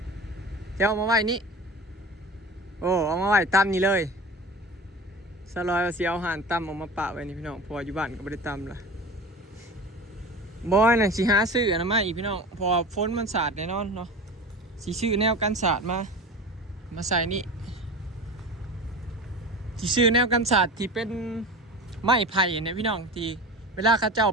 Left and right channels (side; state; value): both; normal; correlation 0.33